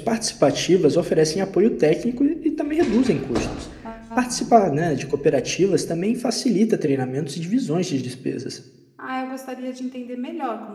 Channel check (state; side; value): identical; both; correlation 1.00